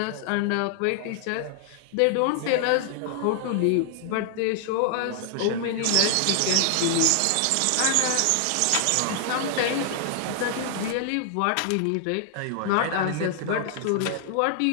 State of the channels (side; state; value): both; different; correlation 0.00